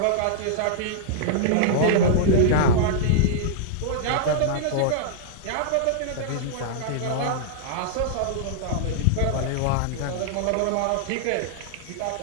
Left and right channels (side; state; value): both; different; correlation -0.01